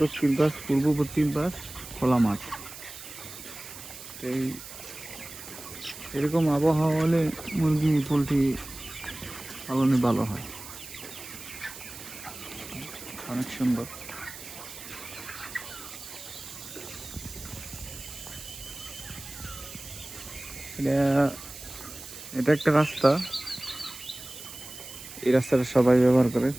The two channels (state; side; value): noise; right; hiss, 13 dB below the sound